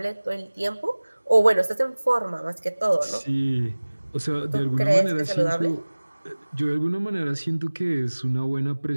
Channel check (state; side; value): inverted; both; correlation -1.00